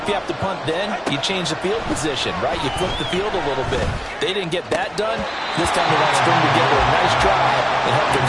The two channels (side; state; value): both; identical; correlation 1.00